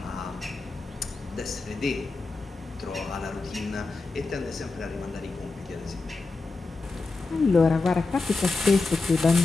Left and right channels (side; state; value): right; quieter; 3.7 dB